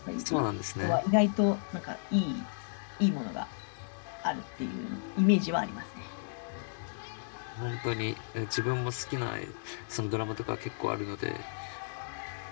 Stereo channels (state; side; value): silent; right; digital silence